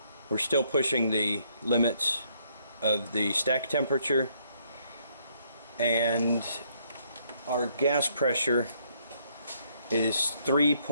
We're still pushing the limits of the stack temperature, and our gas pressure is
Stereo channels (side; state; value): both; inverted; correlation -0.70